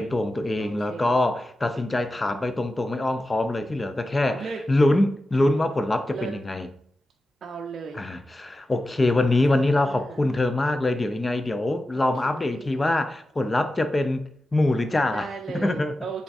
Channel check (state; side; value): normal; both; correlation 0.93